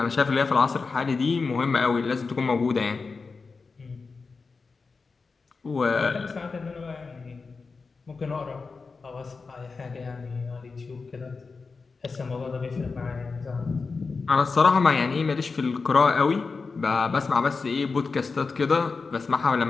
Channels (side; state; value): right; quieter; 4.5 dB